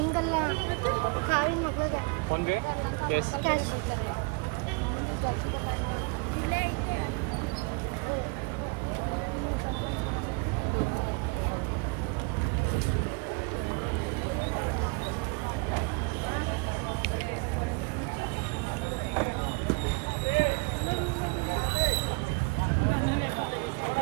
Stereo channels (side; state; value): left; quieter; 31.1 dB